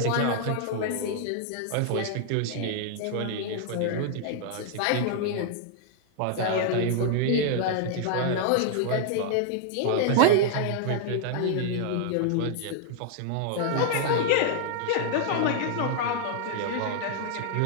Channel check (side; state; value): both; different; correlation -0.01